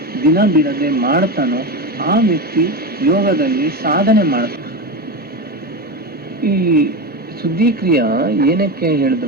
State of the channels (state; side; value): normal; both; correlation 0.19